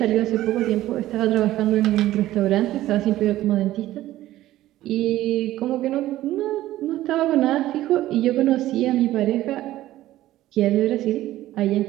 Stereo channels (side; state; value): left; quieter; 14.9 dB